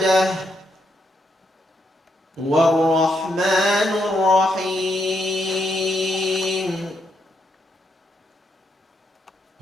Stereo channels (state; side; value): normal; both; correlation 0.78